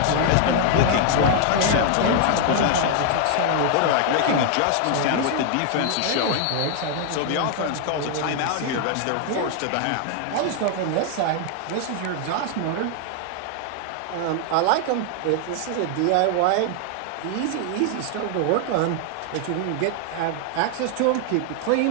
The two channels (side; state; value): both; different; correlation 0.00